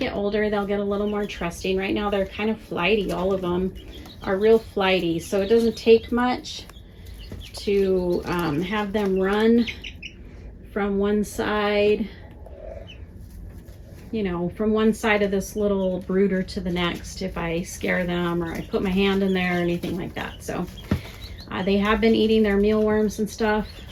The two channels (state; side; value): identical; both; correlation 1.00